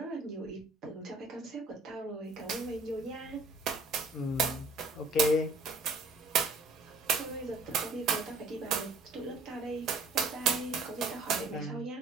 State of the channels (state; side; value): quieter; left; 3.1 dB